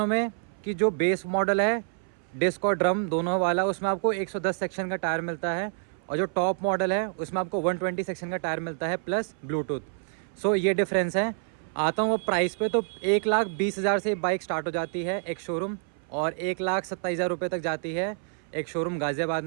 में कि जो बेस मॉडल है डिस्क और ड्रम दोनों वाला, उसमें आपको 110 सेक्शन का टायर मिलता है और जो टॉप मॉडल है उसमें आपको 120 सेक्शन का टायर मिलता है प्लस ब्लूटूथ। ये डिफरेंस है। आता हूँ वो प्राइस पे, तो 1,20,000 से बाइक स्टार्ट हो जाती है एक शोरूम और 1,27,000 रुपये तक जाती है एक शोरूम गाज़ियाबाद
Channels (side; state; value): left; silent; 60 dB below the other